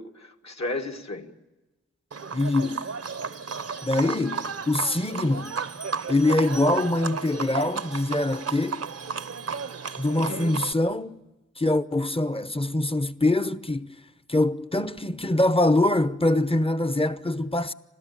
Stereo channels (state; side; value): normal; both; correlation 0.72